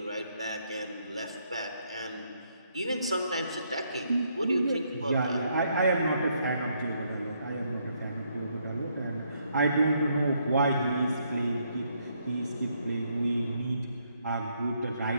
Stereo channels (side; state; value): both; inverted; correlation -0.73